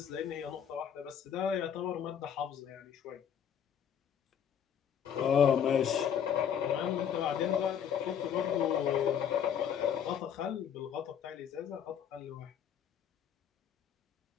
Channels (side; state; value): right; quieter; 8.5 dB